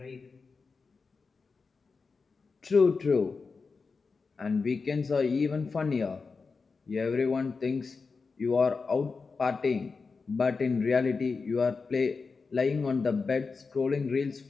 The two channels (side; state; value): right; quieter; 4.6 dB